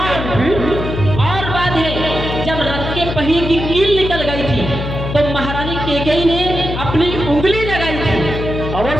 बात है, जब रथ के पहिए की कील निकल गई थी तो महारानी कैकेयी ने अपनी उंगली लगाई थी।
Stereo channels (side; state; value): left; noise; hum, 5 dB below the sound